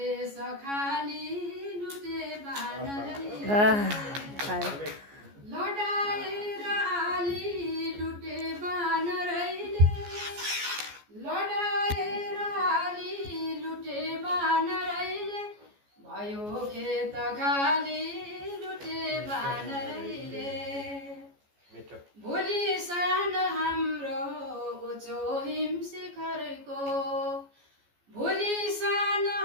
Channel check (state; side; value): late; left; 14 ms